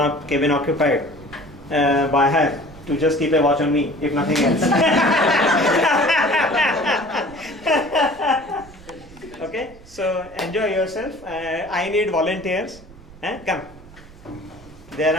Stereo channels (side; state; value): right; noise; rumble, 21 dB below the sound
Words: cabin occupied by her to just keep a watch on me, if nothing else. Okay, so enjoy yourself. I need volunteers. Come. There